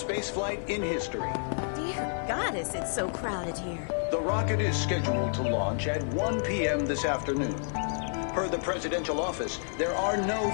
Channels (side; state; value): right; silent; 58 dB below the other